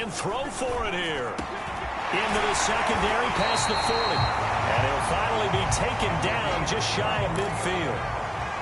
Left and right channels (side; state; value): both; identical; correlation 1.00